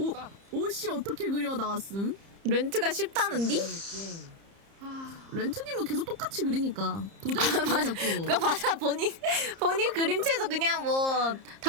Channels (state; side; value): late; left; 30 ms